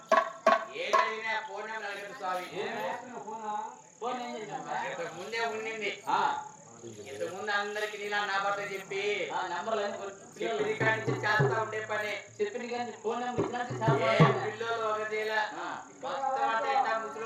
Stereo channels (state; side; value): identical; both; correlation 1.00